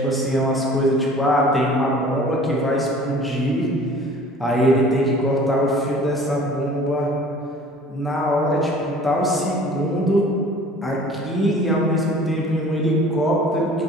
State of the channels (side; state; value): both; normal; correlation 0.48